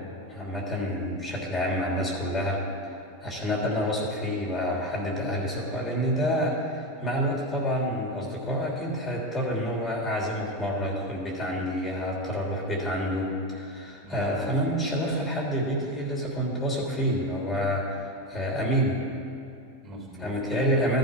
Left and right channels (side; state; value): both; normal; correlation 0.17